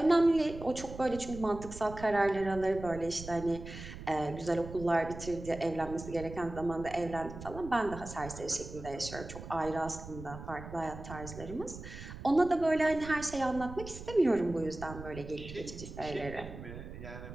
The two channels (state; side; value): noise; right; rumble, 12 dB below the sound